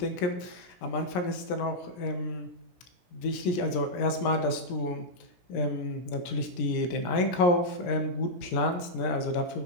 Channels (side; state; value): right; late; 17 ms